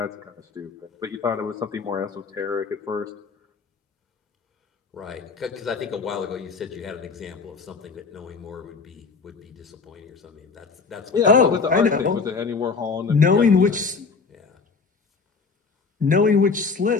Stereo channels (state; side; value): quieter; right; 4.8 dB